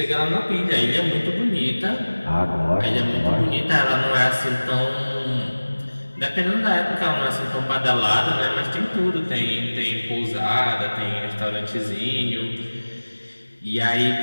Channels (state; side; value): inverted; both; correlation -1.00